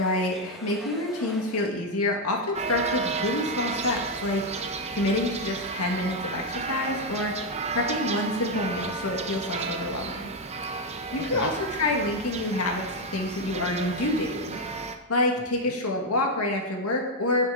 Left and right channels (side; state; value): both; normal; correlation 0.03